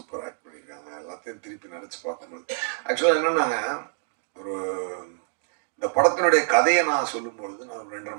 ஆக்ட் பண்ணியிருக்காங்க. எல்லாத்தையும் திருப்பி நினச்சி பார்க்கும்போது ஆக்சுவலாக என்னென்னாங்க, ஒரு இந்த படத்தினுடைய கதையை நான் சொல்லும் பொழுது நான் 2.5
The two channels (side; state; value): left; silent; digital silence